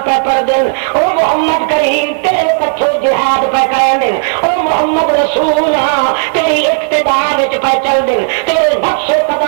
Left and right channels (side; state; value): left; silent; 73 dB below the other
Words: پہ پڑھ دن او محمد کریم تیرے پچھو جہاد پہ کریں دن او محمد رسول ہاں تیری اقتداء وچ پہ چل دن تیرے نقش